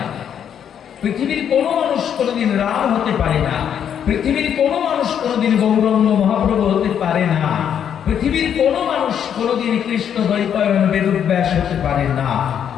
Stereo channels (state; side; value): quieter; right; 8.7 dB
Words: পৃথিবীর কোনো মানুষ কোনোদিন রাম হতে পারে না, পৃথিবীর কোনো মানুষ কোনোদিন গৌরাঙ্গ মহাপ্রভু হতে পারে না, পৃথিবীর কোনো মানুষ কোনোদিন কৃষ্ণ দ্বৈপায়ন বেদব্যাস হতে পারে না।